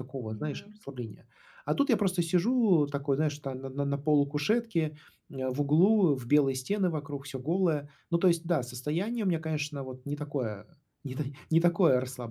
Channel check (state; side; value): identical; both; correlation 1.00